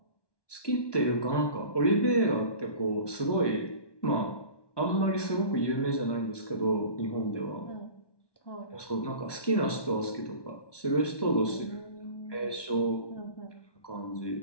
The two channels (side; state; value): right; late; 1.2 ms